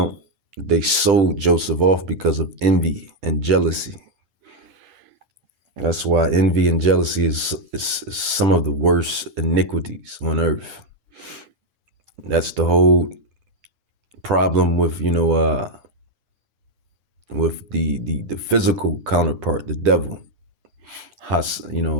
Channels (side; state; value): left; late; 10 ms